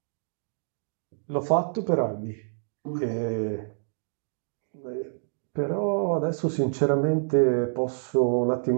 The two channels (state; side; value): silent; left; digital silence